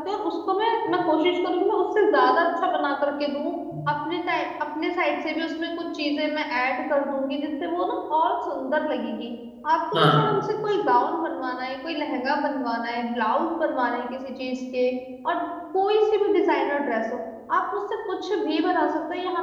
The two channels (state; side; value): identical; both; correlation 1.00